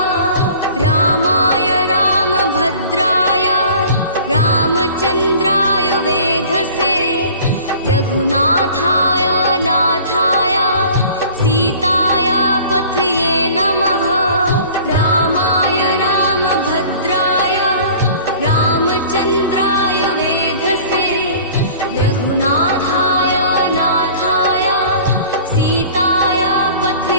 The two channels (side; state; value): both; inverted; correlation -0.46